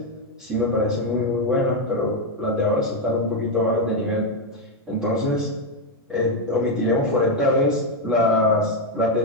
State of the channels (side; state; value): both; normal; correlation 0.04